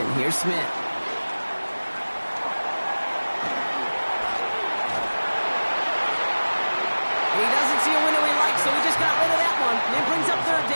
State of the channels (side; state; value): both; inverted; correlation -1.00